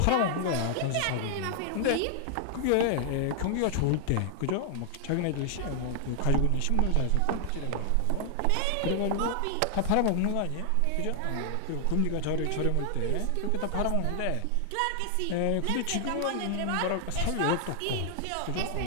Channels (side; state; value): both; different; correlation 0.00